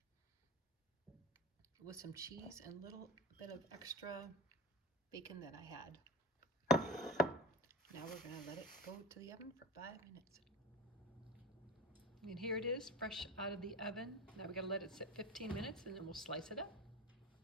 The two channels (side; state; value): both; normal; correlation 0.29